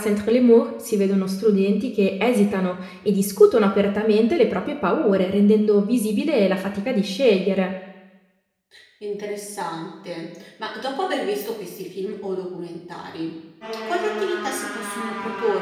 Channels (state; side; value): identical; both; correlation 1.00